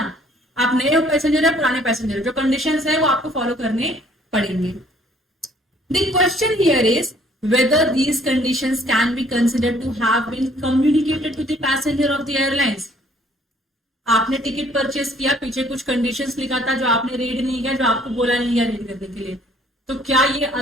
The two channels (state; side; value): normal; both; correlation 0.60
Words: आप नए पैसेंजर है पुराने पैसेंजर, जो कंडीशंस है वो आपको फॉलो करने पड़ेंगे. The question here is whether these conditions can be considered to have been communicated to the passenger of the airlines. आपने टिकट परचेस किया, पीछे कुछ कंडीशंस लिखा था जो आपने रीड नहीं किया, जो आपको बोला नहीं गया रीड करने के लिए, तो क्या ये